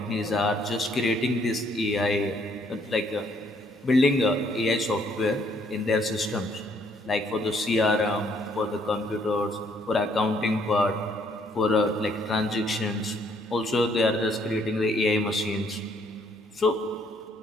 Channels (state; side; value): normal; both; correlation 0.67